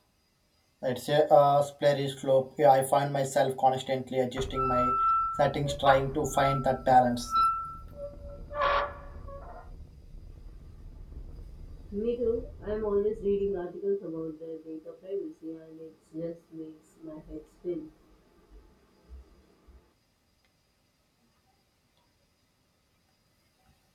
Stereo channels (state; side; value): identical; both; correlation 1.00